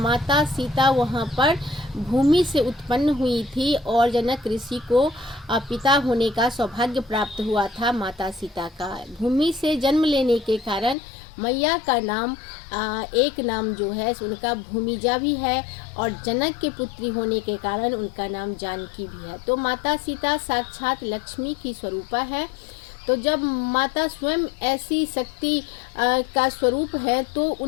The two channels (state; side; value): drops out; right; at 11.0 s